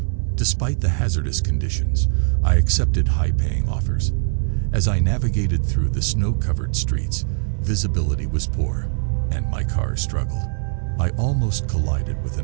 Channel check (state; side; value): silent; left; 65 dB below the other